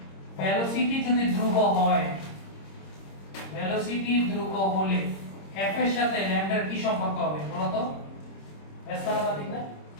ভেলোসিটি যদি ধ্রুব হয়, ভেলোসিটি ধ্রুব হলে f এর সাথে ল্যামডার কি সম্পর্ক হবে বলো তো? ব্যস্তানুপাতিক না?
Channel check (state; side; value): late; right; 26 ms